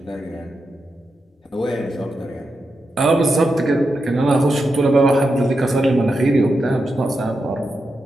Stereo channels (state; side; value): normal; both; correlation 0.87